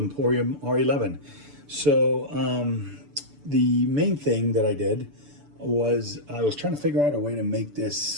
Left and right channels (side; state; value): left; late; 6.9 ms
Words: R11. So the main thing that I did was I was trying to figure out a way to make this